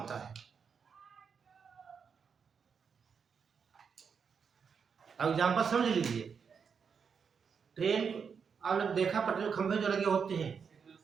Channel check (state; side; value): quieter; left; 6.3 dB